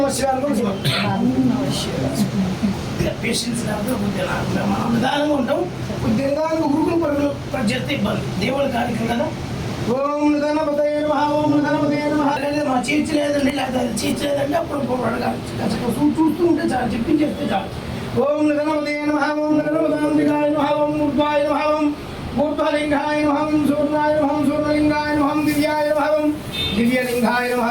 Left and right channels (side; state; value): both; identical; correlation 1.00